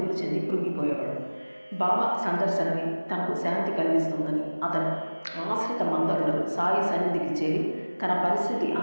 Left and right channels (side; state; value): both; inverted; correlation -1.00